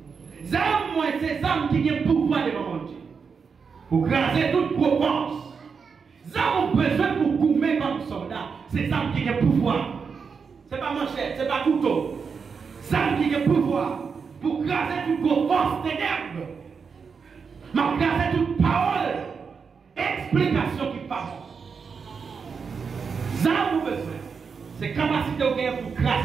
moi, c'est Zam qui a le pouvoir devant mon Dieu. Pour graser toute propense. Ça, on a besoin pour goumer comme soldat. C'est ça qui a le pouvoir. Ce n'est pas manchette, ce n'est pas couteau. Ça qui a le pouvoir pour graser toute force ténèbres. Mais graser toute parole, explication qui passe. Ça, on a besoin. C'est capacité pour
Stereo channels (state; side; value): quieter; left; 5.7 dB